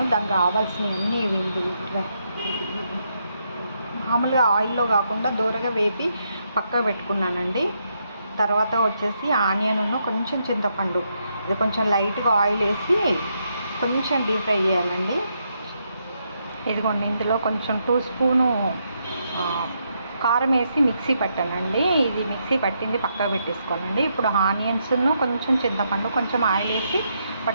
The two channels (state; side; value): inverted; both; correlation -0.79